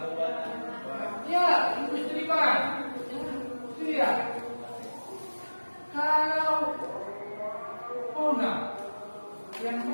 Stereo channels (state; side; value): inverted; both; correlation -1.00